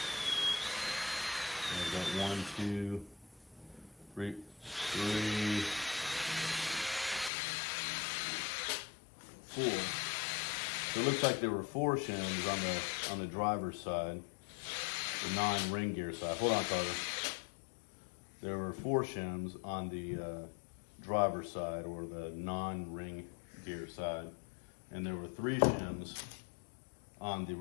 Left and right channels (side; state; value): right; drops out; at 7.3 s